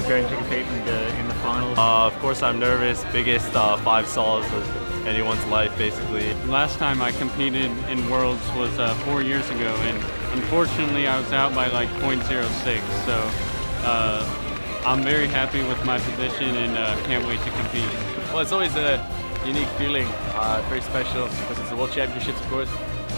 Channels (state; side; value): inverted; both; correlation -1.00